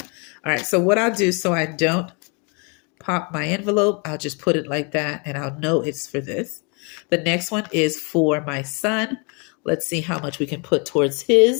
All right, so what I'll do so I don't pop my envelope, I'll just put it like that and I'll know it's for this. The next one is for my son. Let's see how much we can put towards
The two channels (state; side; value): quieter; right; 33.6 dB